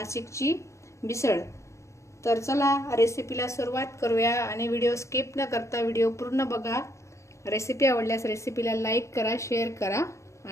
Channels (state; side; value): late; right; 0.14 ms